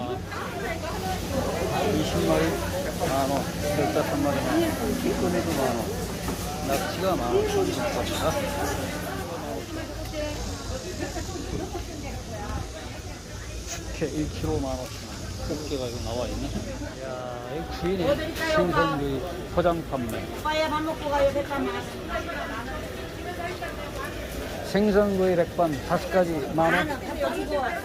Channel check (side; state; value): both; identical; correlation 1.00